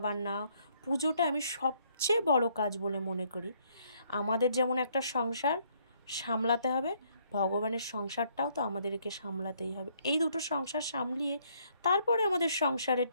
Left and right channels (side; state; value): both; inverted; correlation -0.68